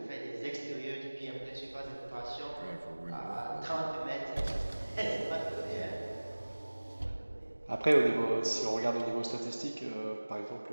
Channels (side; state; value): both; inverted; correlation -1.00